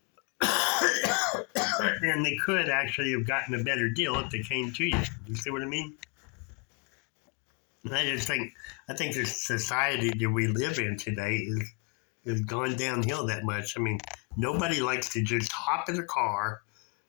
And they could actually have gotten a better deal if they came to you. You see what I mean? And I think the society that we live in today is gone downhill that much. I mean, nobody likes to just hop in a car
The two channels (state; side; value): quieter; right; 31.1 dB